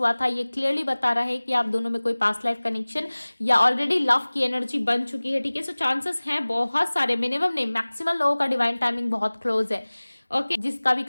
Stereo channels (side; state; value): both; inverted; correlation -1.00